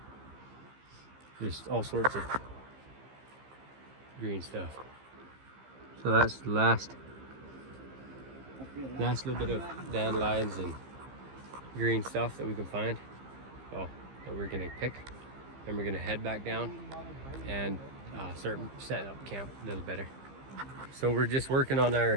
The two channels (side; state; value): left; late; 15 ms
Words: Just all sorts of green stuff. So that's the last little bit of dandelions and green stuff that we can find. Well, that we're gonna pick. Then we're gonna head back down and start setting up camp a little better. So we're just working on